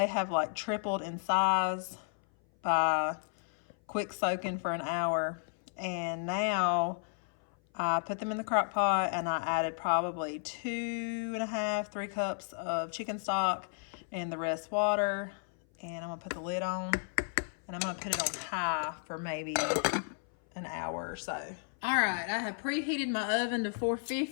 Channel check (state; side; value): silent; right; 56 dB below the other